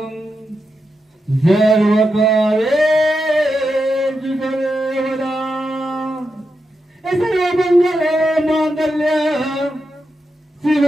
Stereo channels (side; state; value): both; normal; correlation 0.87